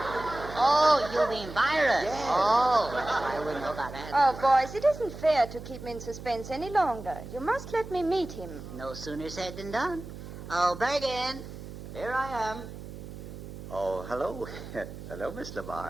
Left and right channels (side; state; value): right; noise; hum, 12 dB below the sound